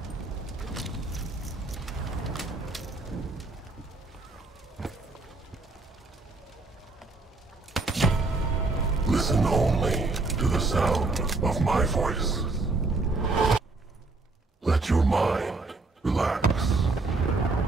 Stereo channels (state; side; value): quieter; left; 3.5 dB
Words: Listen only to the sound of my voice. Let your mind relax.